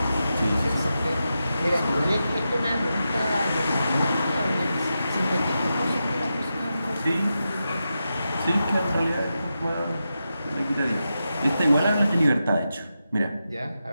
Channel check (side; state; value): both; inverted; correlation -0.89